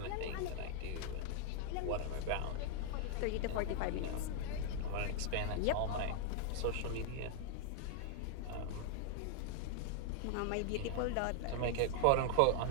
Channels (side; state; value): both; different; correlation 0.00